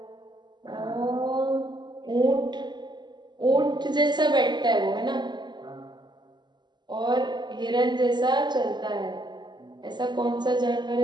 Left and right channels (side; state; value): left; late; 0.21 ms